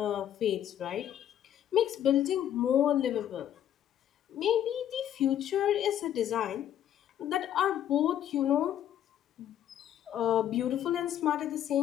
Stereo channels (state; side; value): quieter; right; 10.7 dB